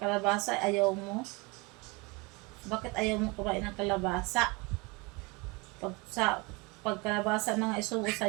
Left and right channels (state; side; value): quieter; left; 27.0 dB